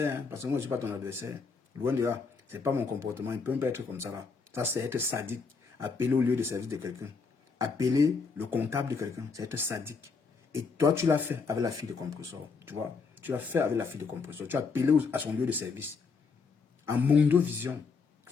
hein, parce que moi, je ne suis pas ton adversaire. Loin de là. Ce n'est pas mon comportement. Il peut même pas être comme ça là. Ça, c'est être sadique. Appeler au lieu de service de quelqu'un. Appeler le comptable de quelqu'un. C'est être sadique. Et toi, tu l'as fait avec la fille de compresseur. Tu vois. Tu l'as fait avec la fille de compresseur. Tu as appelé à son lieu de service. En Mondo Vision.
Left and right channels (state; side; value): quieter; right; 4.9 dB